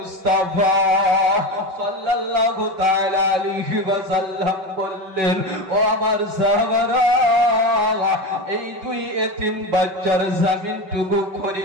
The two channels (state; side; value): late; left; 5.3 ms